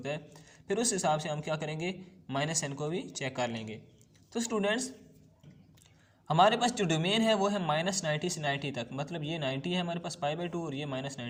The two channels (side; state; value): both; identical; correlation 1.00